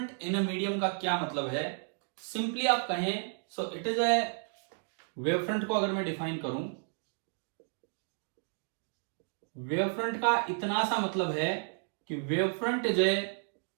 in a medium का क्या मतलब है? सिंपली आप कहें, so it is a, wavefront को अगर मैं डिफाइन करूं, वेवफ्रंट का इतना सा मतलब है कि wavefront is a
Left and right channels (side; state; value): left; silent; 56 dB below the other